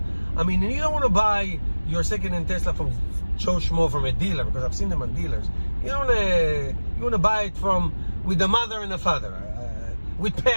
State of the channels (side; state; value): both; inverted; correlation -1.00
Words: I mean, you don't want to buy your second-hand Tesla from Joe Schmo, from a dealer, because I've seen them on dealers. You want to buy it with a mother and a father, with